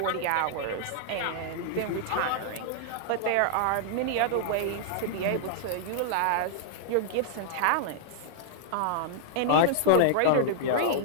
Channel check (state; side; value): different; both; correlation -0.01